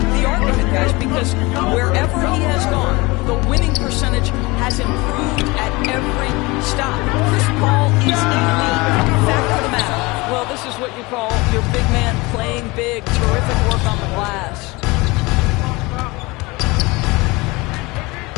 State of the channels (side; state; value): right; quieter; 23.8 dB